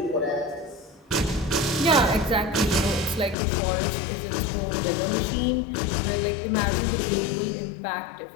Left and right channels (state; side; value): drops out; right; at 3.4 s